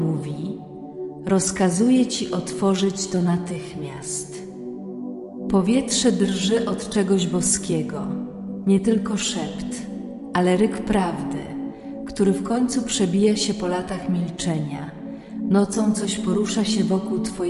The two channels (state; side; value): identical; both; correlation 1.00